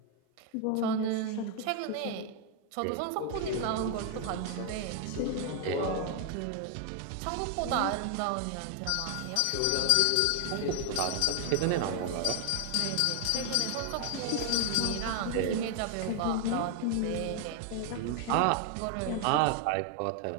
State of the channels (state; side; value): different; both; correlation 0.00